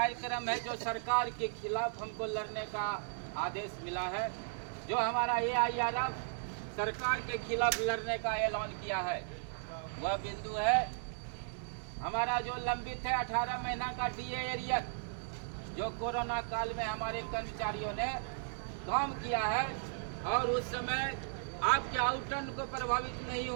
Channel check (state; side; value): silent; left; 54 dB below the other